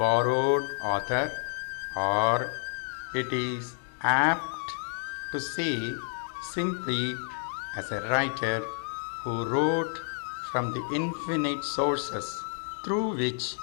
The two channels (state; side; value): silent; right; 58 dB below the other